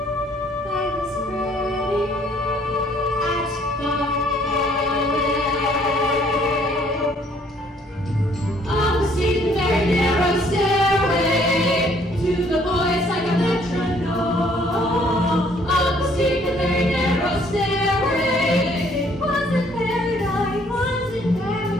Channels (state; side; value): normal; both; correlation 0.62